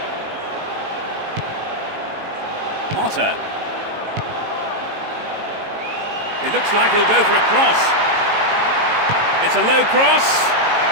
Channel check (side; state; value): left; late; 18 ms